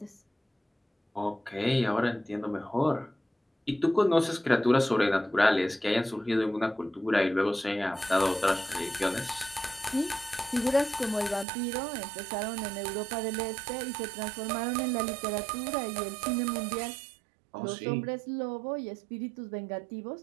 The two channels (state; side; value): drops out; left; at 11.5 s